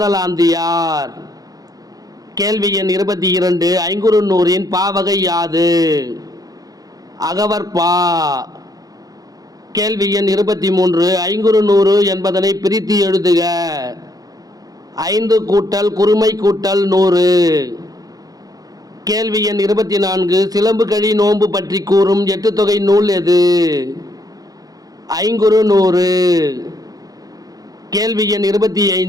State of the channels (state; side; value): late; left; 0.18 ms